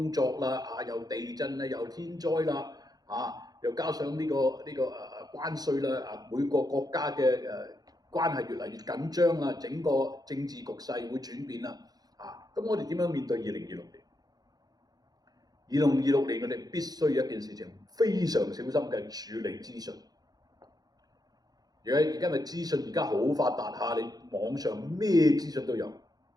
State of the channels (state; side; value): late; left; 0.19 ms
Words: 作啦，又地震啦，又天災啦，又加上呢個關稅啦，每個國家嘅關係越嚟越緊張啦，整個政治局勢會轉變啦，咁我哋點樣面對2026年？2026年我哋必須有一件事情非常小心嘅處理資訊。而家咪資訊而家好發達你網上咩資訊都有，